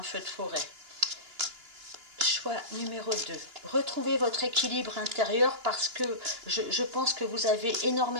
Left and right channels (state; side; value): late; left; 2.9 ms